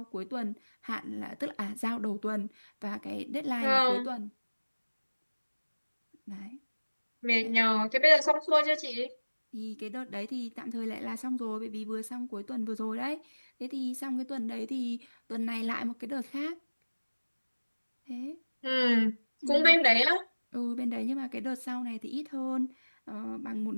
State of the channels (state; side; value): inverted; both; correlation -1.00